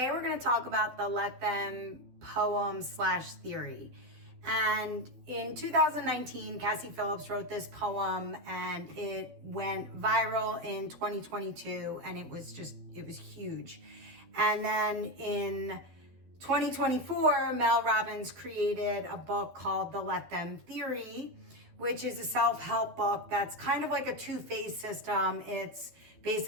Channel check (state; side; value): late; left; 12 ms